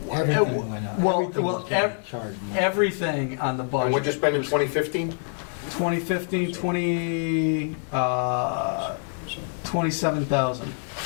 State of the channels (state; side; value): silent; right; 61 dB below the other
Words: Everything went up. well, Everything well, was getting charged more. everything on the And what'd you budget. spend in 2015? 2015, 27,000.